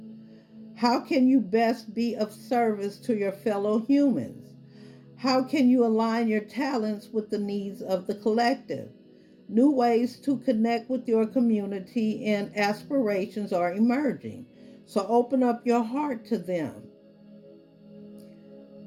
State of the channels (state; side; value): identical; both; correlation 1.00